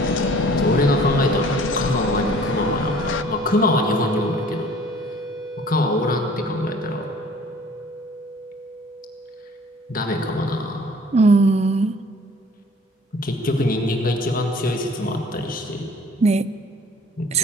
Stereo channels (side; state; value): both; normal; correlation 0.52